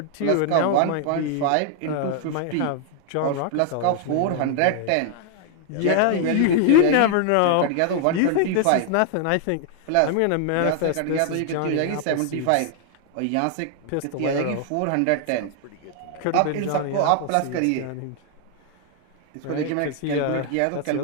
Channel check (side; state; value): both; different; correlation 0.00